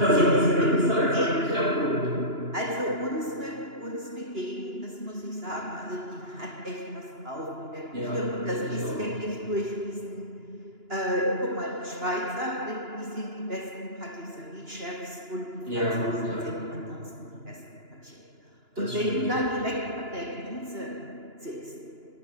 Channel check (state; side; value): late; left; 2.9 ms